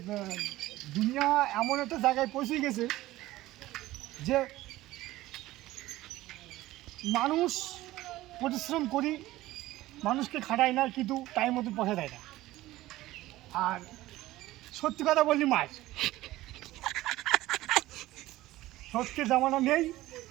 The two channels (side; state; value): left; quieter; 16.8 dB